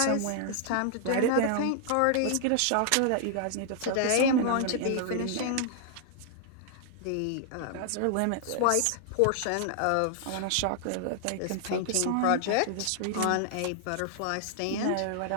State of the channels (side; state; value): both; different; correlation -0.01